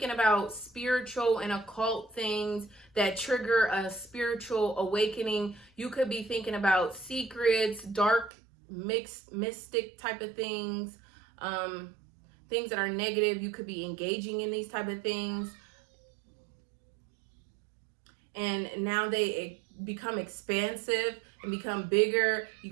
about spiritual and occult things that trigger a spiritual awakening. You could be thinking about secrets, dark, mixed, mystic type of things, things that are negative. You could be engaging in these type of things. And now they become expansive and become bigger. You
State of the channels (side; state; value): left; drops out; at 8.3 s